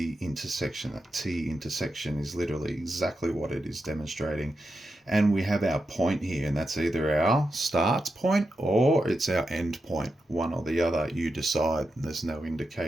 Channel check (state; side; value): normal; both; correlation 0.88